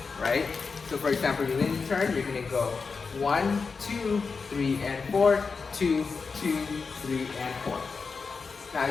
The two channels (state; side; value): quieter; right; 4.9 dB